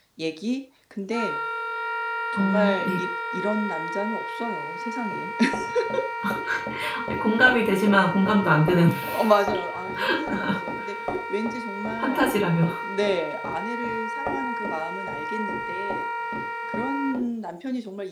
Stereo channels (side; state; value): both; identical; correlation 1.00